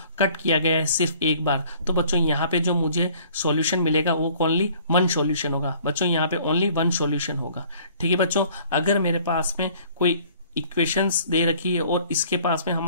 कट किया गया है सिर्फ एक बार, तो बच्चों यहाँ पे जो मुझे सॉल्यूशन मिलेगा वो ओनली वन सॉल्यूशन होगा। बच्चों यहाँ पे ओनली वन सॉल्यूशन होगा। ठीक है बच्चों, अगर मेरे पास में कोई इक्वेशंस दे रखी है और इसके पास में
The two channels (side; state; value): both; inverted; correlation -0.55